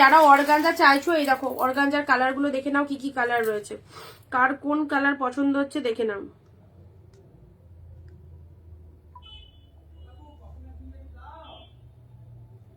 অর্গানজা চাইছো এই দেখো অর্গানজার কালার গুলো দেখে নাও কি কি কালার রয়েছে, কার কোন কালার পছন্দ হচ্ছে দেখে নাও।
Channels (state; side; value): identical; both; correlation 1.00